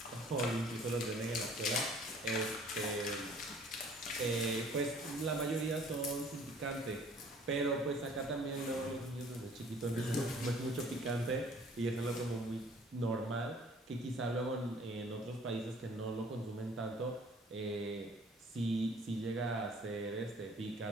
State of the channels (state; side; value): normal; both; correlation 0.54